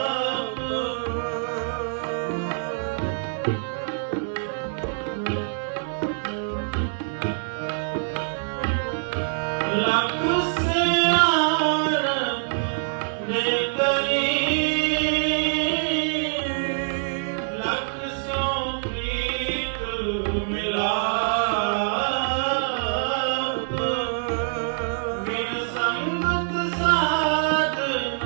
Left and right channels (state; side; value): silent; left; digital silence